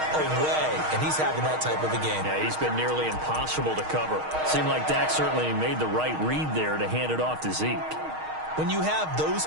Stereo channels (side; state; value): left; late; 6.4 ms